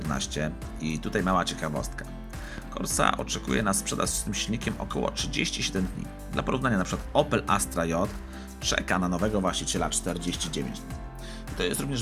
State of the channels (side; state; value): both; identical; correlation 1.00